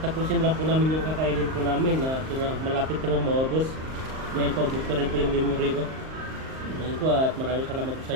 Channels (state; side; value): late; left; 38 ms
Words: lang po namin yung kakainin po namin na malapit namang maubos. Dahil paubos na rin po yung memory ko. Ayun po at maraming salamat po sa